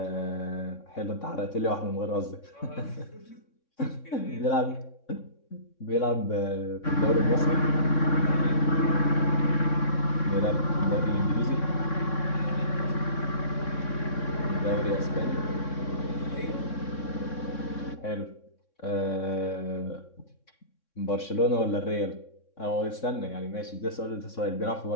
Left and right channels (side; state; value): right; late; 3.6 ms